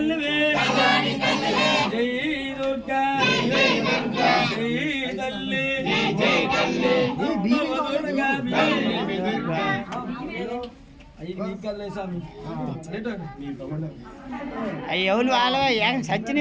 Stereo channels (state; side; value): identical; both; correlation 1.00